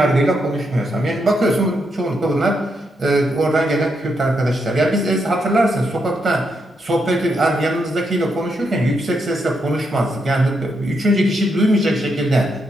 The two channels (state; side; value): normal; both; correlation 0.80